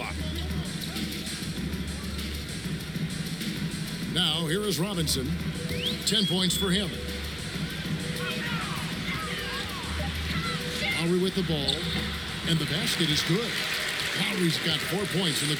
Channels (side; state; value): right; noise; hum, 20 dB below the sound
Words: Now here is Robinson. 10 points for him. Lowry with the ball. And the basket is good. Lowry's got 4 points in the